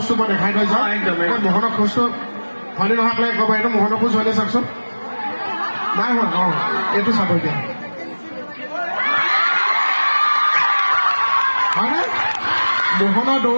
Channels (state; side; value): inverted; both; correlation -1.00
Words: মই দেখাই থৈ যাওঁ একদম মোহনৰ খোজটো হয়নে নহয় আপোনালোকে ক'ব এইটো মোহনৰ খোজ হয়নে চাওকচোন নাই হোৱা অঁ এইটো চাব এতিয়া হয়নে মোহনৰ